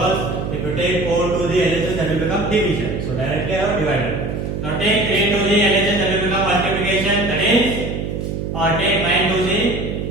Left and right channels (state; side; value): noise; right; hum, 4 dB below the sound